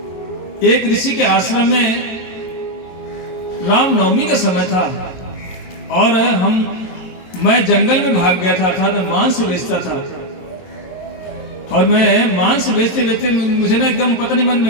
एक ऋषि के आश्रम में रामनवमी का समय था और मैं जंगल में भाग गया था, अर्थात मैं मांस बेचता था। और मैं मांस बेचते बेचते मुझे ना एकदम पता नहीं मन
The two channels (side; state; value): right; late; 22 ms